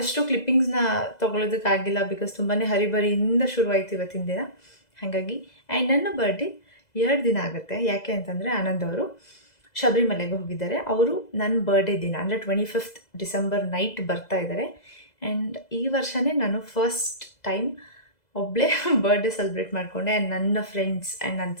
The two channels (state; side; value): late; right; 2.0 ms